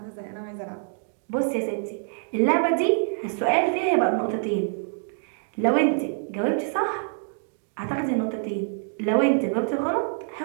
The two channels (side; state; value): left; silent; digital silence